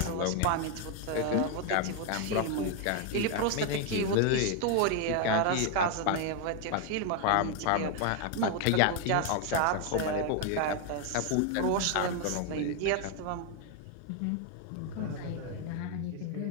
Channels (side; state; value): both; different; correlation 0.01